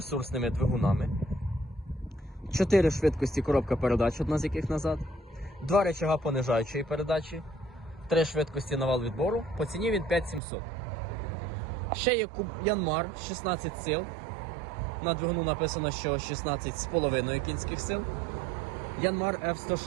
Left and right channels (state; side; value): drops out; left; at 10.4 s